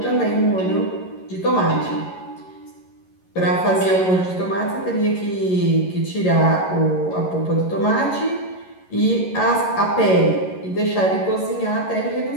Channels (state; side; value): late; right; 11 ms